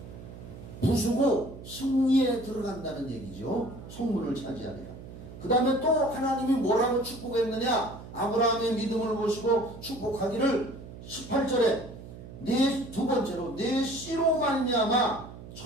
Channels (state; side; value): noise; right; hum, 14 dB below the sound